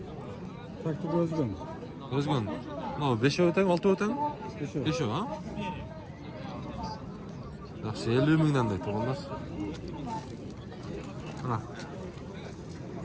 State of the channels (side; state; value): both; identical; correlation 1.00